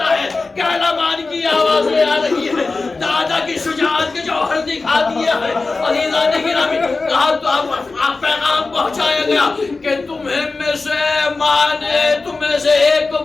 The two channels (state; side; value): quieter; right; 3.7 dB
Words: کہ اعلمان کی آوازیں آ رہی ہے, دادا کی شجاعت کے جوہر دکھا دیا ہے. عزیزان گرامی کہا تو آپ پیغام پہنچایا گیا کہ تمہیں میں سے ماں نے تمہیں سے ایک کو